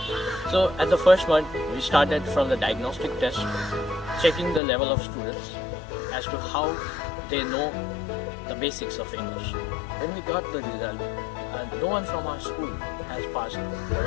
So at the first month, we started from the diagnostic test, checking the level of students as to how they know the basics of English. When we got the result, no one from our school has passed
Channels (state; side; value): drops out; right; at 4.6 s